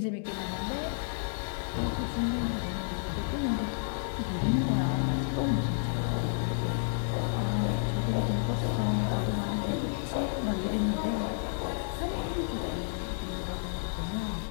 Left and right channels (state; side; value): silent; right; digital silence